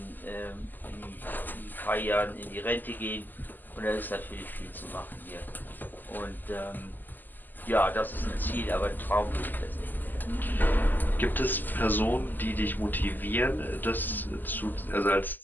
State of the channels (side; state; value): right; late; 0.087 ms